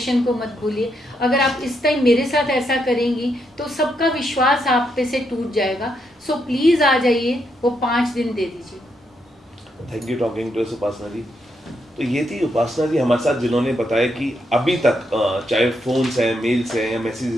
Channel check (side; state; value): both; normal; correlation 0.79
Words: को मत भूलिए। अगर आप इस टाइम मेरे साथ ऐसा करेंगी तो सबका विश्वास आप पे से टूट जाएगा। सो प्लीज़ आ जाइए, वो 5 दिन दे दीजिए। Thank you talking to us Upasana ji. तो ये थी उपासना जी हमारे साथ, जिन्होंने बताया कि अभी तक चाहे फ़ोन्स हैं, मेल्स हैं या